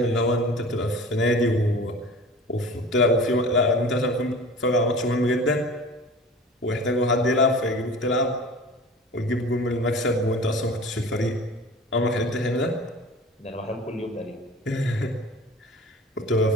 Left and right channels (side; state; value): both; normal; correlation 0.40